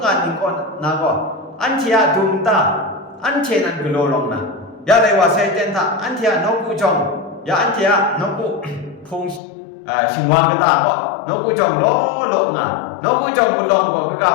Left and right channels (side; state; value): right; drops out; at 9.4 s